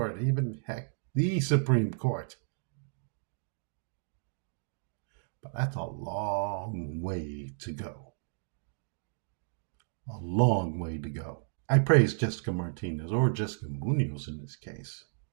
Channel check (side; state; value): left; silent; digital silence